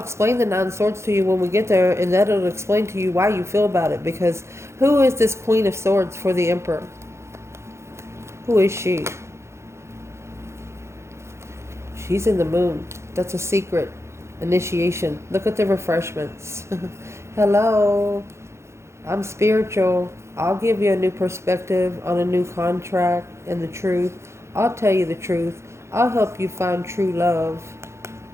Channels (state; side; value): late; left; 0.13 ms